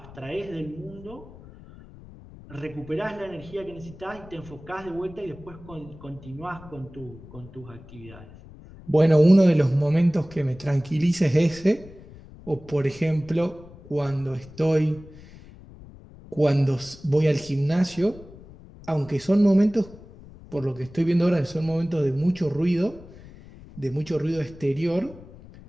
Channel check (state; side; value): noise; left; rumble, 19 dB below the sound